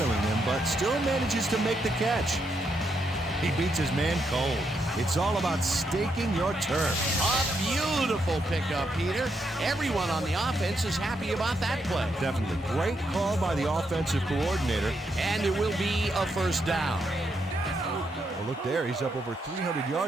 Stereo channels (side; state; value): both; normal; correlation 0.79